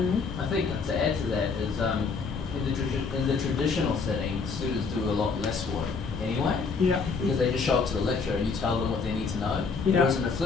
I think to add to that is in the traditional setting, students do a lot less work anyway, because they just show up to the lecture and you tell them what they need to know. Whereas in a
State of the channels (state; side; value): quieter; right; 4.9 dB